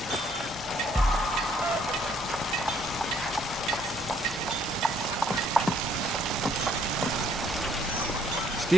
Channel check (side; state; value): both; normal; correlation 0.66